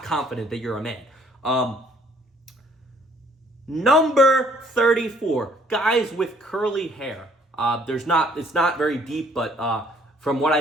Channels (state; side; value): normal; both; correlation 0.62